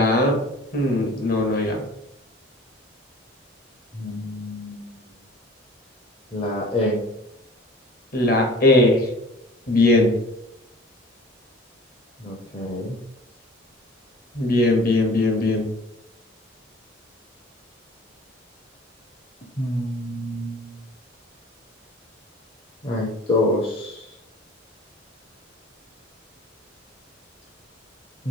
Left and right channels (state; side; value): normal; both; correlation 0.46